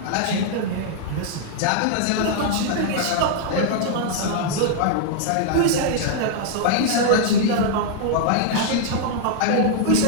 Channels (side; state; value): both; different; correlation -0.01